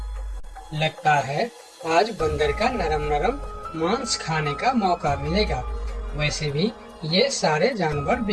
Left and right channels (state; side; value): identical; both; correlation 1.00